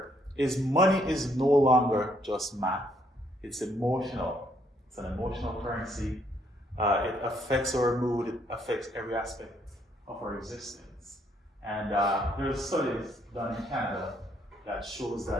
is money is no longer just math. It's emotional. It's an emotional currency. It affects our mood. It affects every aspect of our existence. And there's studies done in Canada that shows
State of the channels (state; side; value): normal; both; correlation 0.70